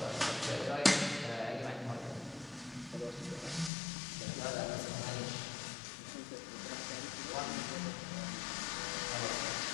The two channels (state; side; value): drops out; right; at 3.7 s